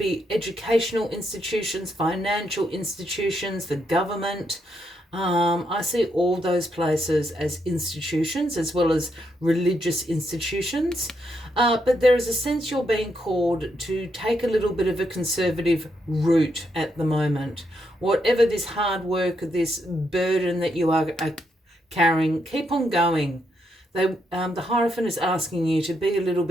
educational institutions, financial institutions, the government. I see all those places as institutions, as well as religious institutions. But there is a sense you're being called to take a little bit of a conservative route at the moment. Whatever this hard work, this burden that you are carrying, keep on going. The Hierophant is asking you to be a little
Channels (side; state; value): both; normal; correlation 0.79